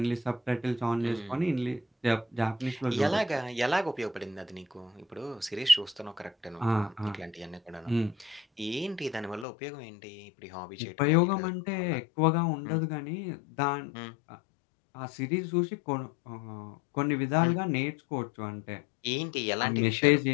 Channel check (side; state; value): right; drops out; at 9.5 s